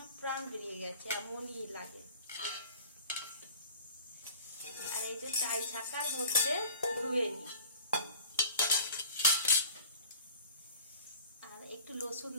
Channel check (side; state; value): both; inverted; correlation -0.44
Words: প্রাণ বেরিয়ে গেছে, এমনই লাগে। আর এই যে চাই ছাকার মধ্যে ধুয়ে নি, আর একটু রসুন